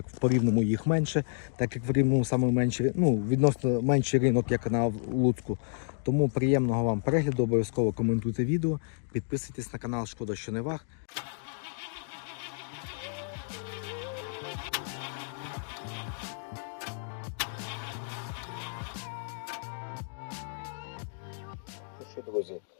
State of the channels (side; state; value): right; silent; digital silence